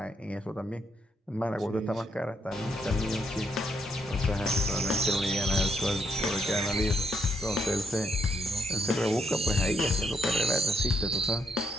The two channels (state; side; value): normal; both; correlation 0.76